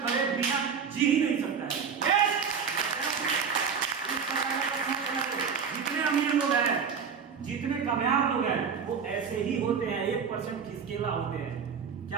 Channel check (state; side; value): quieter; left; 6.4 dB